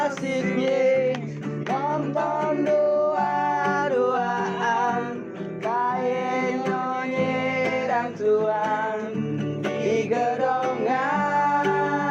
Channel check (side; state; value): both; identical; correlation 1.00